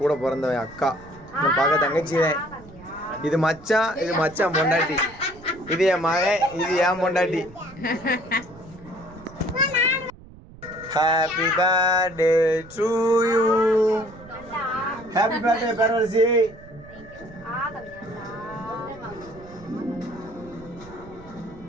கூட பிறந்தவன் அக்கா, பார்க்க தங்கச்சி. இது மச்சான் பொண்டாட்டி. இது என் மகன், இது என் பொண்டாட்டி. Happy birthday to you. Happy birthday பேரரசி.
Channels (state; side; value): noise; right; rumble, 20 dB below the sound